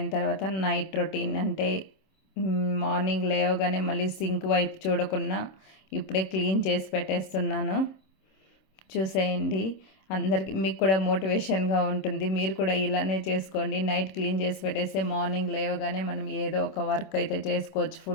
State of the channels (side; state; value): right; late; 26 ms